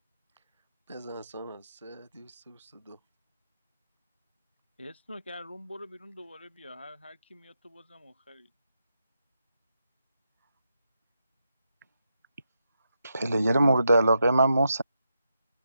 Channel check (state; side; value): inverted; both; correlation -0.84